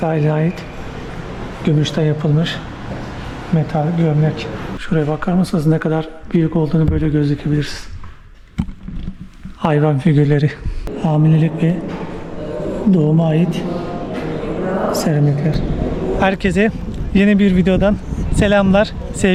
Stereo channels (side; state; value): both; identical; correlation 1.00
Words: ait gümüşten yapılmış metal gömlek. Şuraya bakar mısınız ne kadar büyük olduğunu böyle gözükebilirsiniz. Hayvan figürleri. Hamilelik ve doğuma ait seramikler. Herkese yeni bir videodan selamlar,